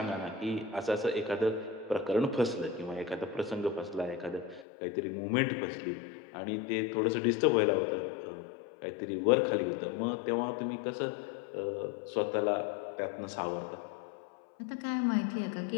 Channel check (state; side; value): drops out; right; at 4.7 s